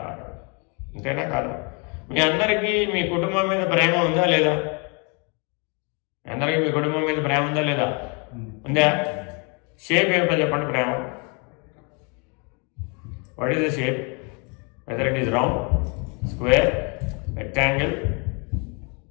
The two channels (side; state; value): right; quieter; 34.0 dB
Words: అంతేనా కాదు? మీ అందరికీ మీ కుటుంబం మీద ప్రేమ ఉందా లేదా? అందరికీ మీ కుటుంబం మీద ప్రేమ ఉందా లేదా? ఉందా? షేప్ ఏమిటో చెప్పండి ప్రేమ. What is the shape? Whether it is round, square, rectangle.